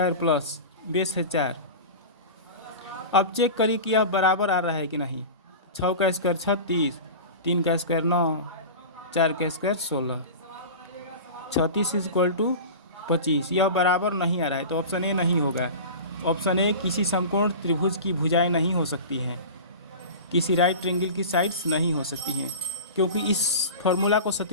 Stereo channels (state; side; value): inverted; both; correlation -0.32